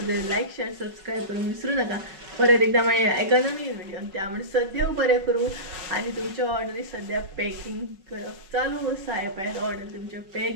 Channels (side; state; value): left; late; 5.3 ms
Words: जाल्यार लायक शेअर सबस्क्रायब करूंक विसरूं नाका. परत एकदा मेळया एका नवीन व्हिडिओन. त्या म्हणसर देव बरें करूं आनी तुमच्या ऑर्डरी सद्या पॅकिंग करप चालू आसा. हे पळयात ऑर्डर तुमचे पॅक